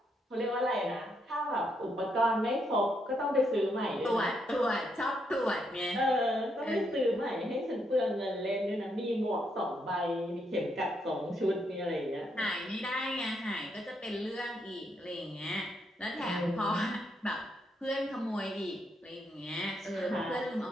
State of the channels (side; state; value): both; normal; correlation 0.77